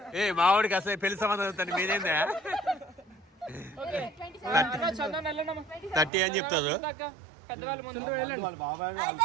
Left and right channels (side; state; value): left; drops out; at 6.1 s